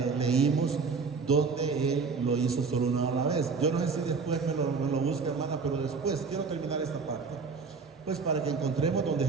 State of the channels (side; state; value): left; quieter; 4.9 dB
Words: leímos donde Él lo hizo solo una vez. Yo no sé si después me lo busca, hermana, pero después quiero terminar esta parte, pues para que encontremos donde